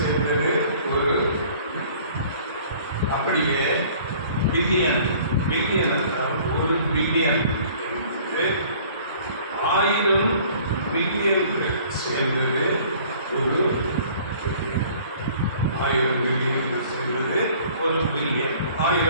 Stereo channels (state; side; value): inverted; both; correlation -0.52